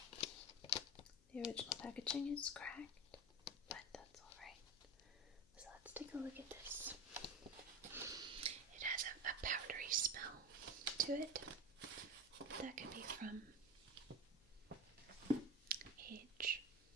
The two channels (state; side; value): noise; left; hum, 26 dB below the sound